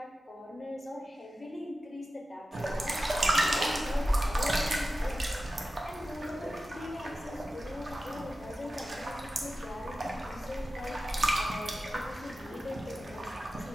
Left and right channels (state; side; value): normal; both; correlation 0.94